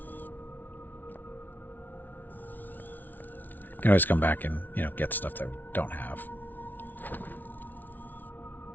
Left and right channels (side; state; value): right; late; 0.084 ms